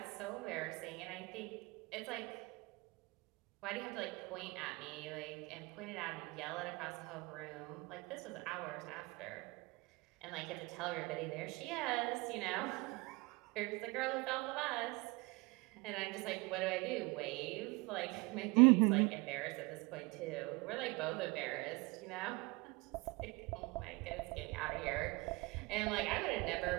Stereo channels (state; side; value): quieter; left; 25.6 dB